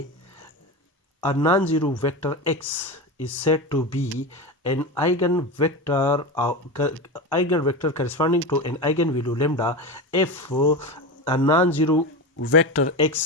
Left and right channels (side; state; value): both; normal; correlation 0.22